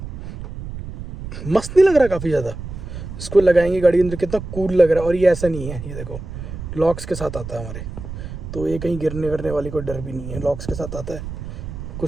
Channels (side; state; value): right; noise; rumble, 9 dB below the sound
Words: मस्त नहीं लग रहा? काफ़ी ज़्यादा। इसको लगाएंगे गाड़ी के अंदर, कितना कूल लग रहा है। और ये ऐसा नहीं है, ये देखो लॉक्स के साथ आता है हमारे, तो ये कहीं गिरने वरने वाली कोई डर भी नहीं है, लॉक्स के साथ आता है।